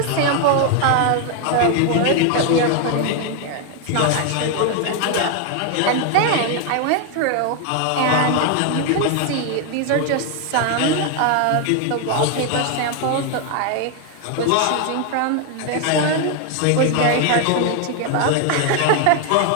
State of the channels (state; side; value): different; both; correlation 0.01